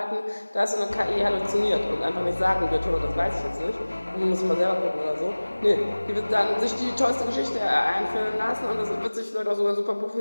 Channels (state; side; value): inverted; both; correlation -1.00